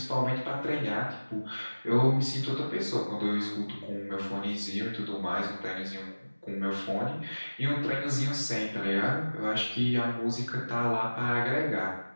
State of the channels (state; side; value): inverted; both; correlation -1.00